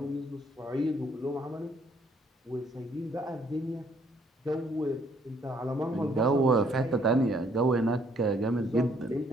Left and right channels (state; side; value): normal; both; correlation 0.66